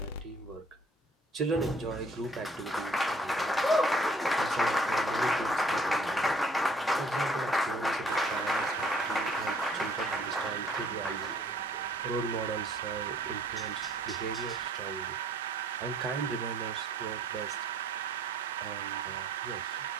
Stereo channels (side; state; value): both; normal; correlation 0.59